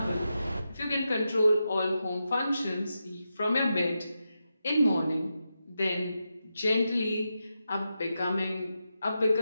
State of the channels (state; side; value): inverted; both; correlation -0.88